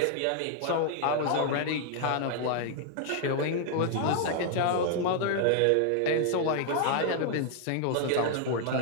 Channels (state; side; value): different; both; correlation 0.00